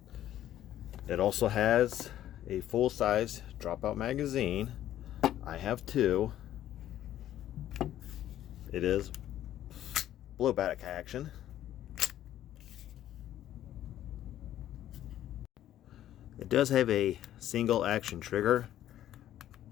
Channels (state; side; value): quieter; right; 12.3 dB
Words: It also has a full-size dropout magazine. I have two. It is blowback action. It does have a single action trigger.